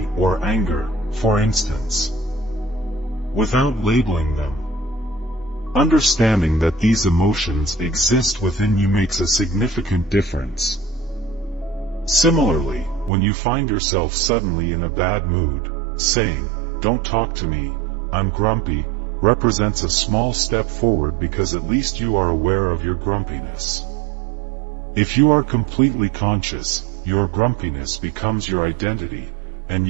or anger, for instance, without labeling them. Understanding that these emotions exist within you makes a significant difference. Similarly, when you find yourself suddenly in a bad mood, saying, "Don't talk to me, I'm grumpy," represents a small step forward because at least you are aware of your grumpiness. If you are completely conscious, your grumpiness becomes your identity, and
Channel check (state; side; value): drops out; left; at 13.1 s